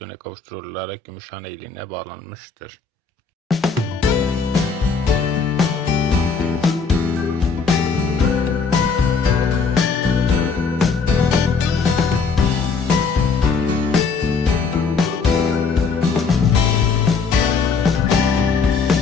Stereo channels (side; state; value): right; quieter; 5.0 dB